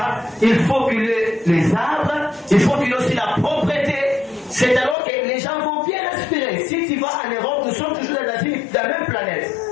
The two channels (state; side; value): drops out; right; at 5.0 s